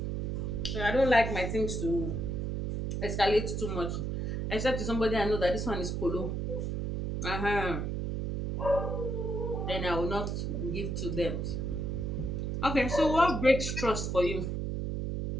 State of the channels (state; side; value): noise; right; hum, 2 dB below the sound